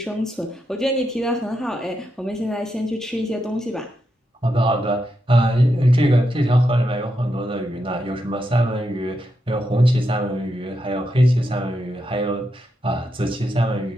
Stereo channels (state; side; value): normal; both; correlation 0.84